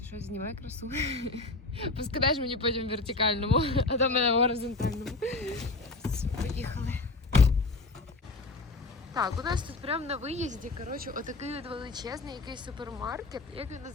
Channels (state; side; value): quieter; right; 3.3 dB